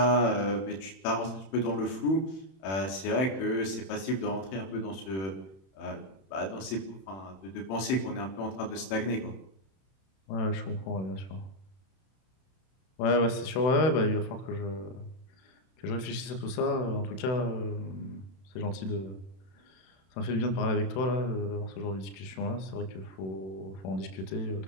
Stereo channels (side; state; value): right; late; 31 ms